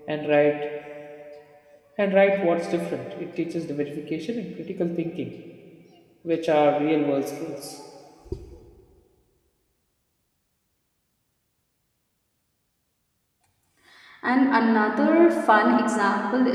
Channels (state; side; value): identical; both; correlation 1.00